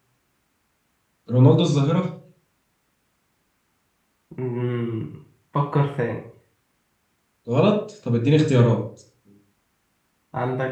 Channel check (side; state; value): both; identical; correlation 1.00